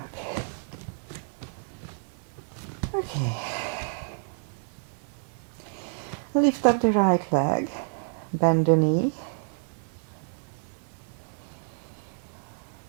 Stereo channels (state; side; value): silent; left; 59 dB below the other